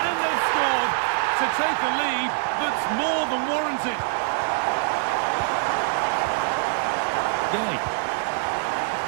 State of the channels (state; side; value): silent; left; digital silence